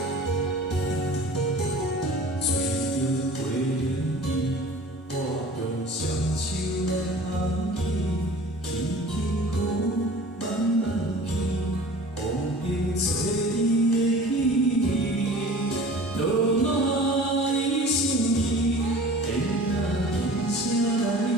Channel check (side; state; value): both; normal; correlation 0.42